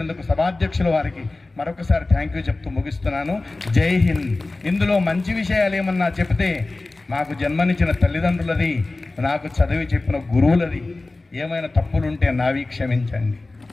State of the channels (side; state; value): right; quieter; 3.2 dB